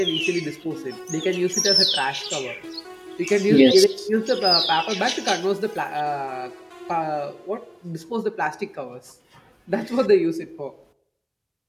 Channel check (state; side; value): identical; both; correlation 1.00